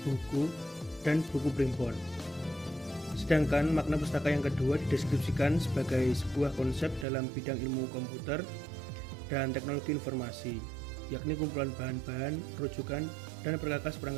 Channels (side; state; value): left; drops out; at 7.1 s